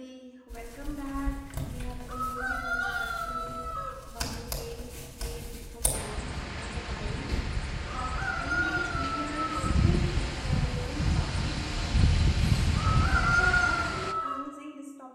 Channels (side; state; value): both; identical; correlation 1.00